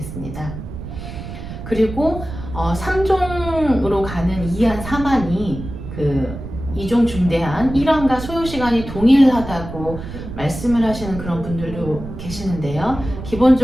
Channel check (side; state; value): right; noise; rumble, 10 dB below the sound